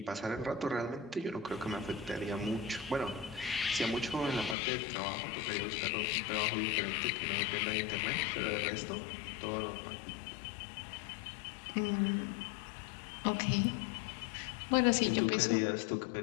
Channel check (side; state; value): right; drops out; at 4.5 s